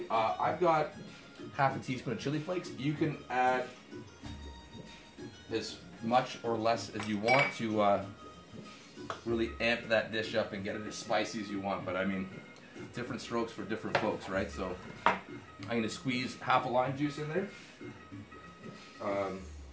I've got half a teaspoon of chili flakes. You can add as much or less as you want to really amp that dish up and get it as spicy as you want. But I mean, different strokes for different folks, right? So I'm going to squeeze half a lime juice in there.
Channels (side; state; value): both; identical; correlation 1.00